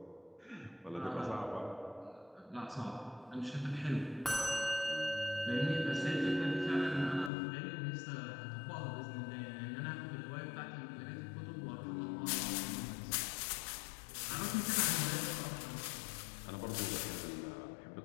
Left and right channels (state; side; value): drops out; right; at 7.3 s